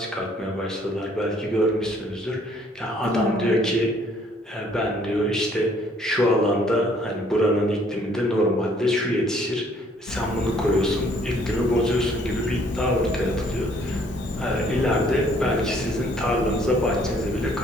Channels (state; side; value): normal; both; correlation 0.62